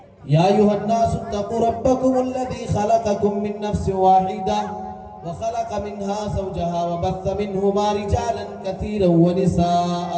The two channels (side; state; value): both; identical; correlation 1.00